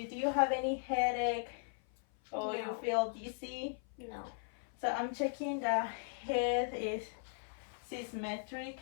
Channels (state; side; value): silent; right; 53 dB below the other